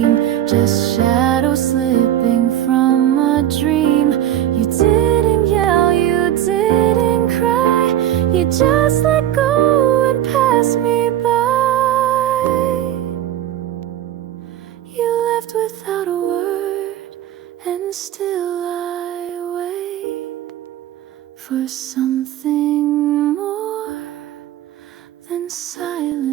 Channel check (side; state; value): left; quieter; 12.0 dB